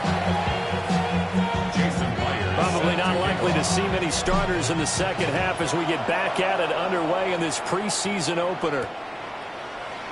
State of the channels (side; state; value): both; identical; correlation 1.00